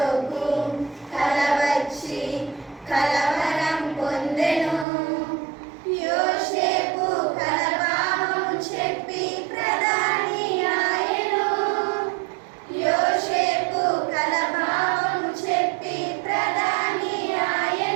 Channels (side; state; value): left; drops out; at 4.9 s